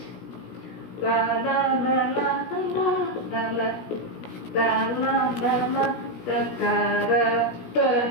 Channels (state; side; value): late; right; 17 ms